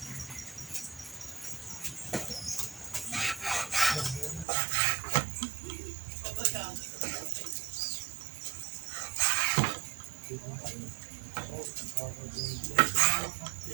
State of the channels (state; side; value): drops out; left; at 4.5 s